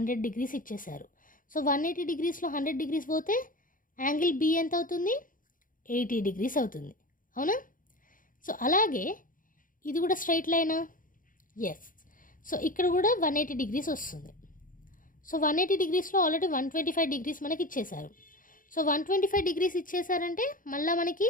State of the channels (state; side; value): late; right; 0.39 ms